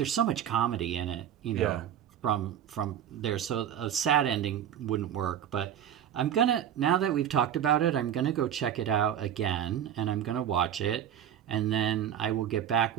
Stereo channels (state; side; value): quieter; left; 9.9 dB